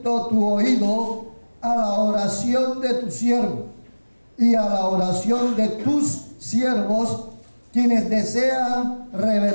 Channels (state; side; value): inverted; both; correlation -1.00